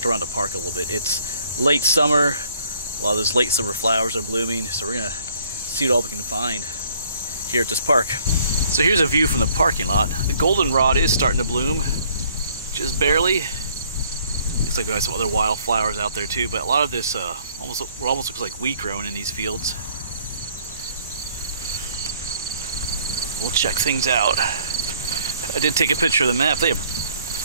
around the park a little bit. It's late summer. A lot of those late summer flowers are blooming, so we're going to see what all we can find here at this park. So here's a view from the parking lot. The goldenrod is starting to bloom, just barely. Looks like we have some other wildflowers out there too, but a lot of this almost looks like wheat growing in these fields. We'll check things out. I did take a picture of the map. They have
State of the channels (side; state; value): both; inverted; correlation -0.61